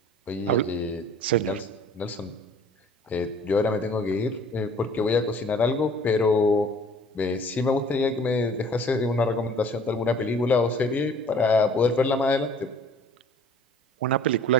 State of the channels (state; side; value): normal; both; correlation 0.52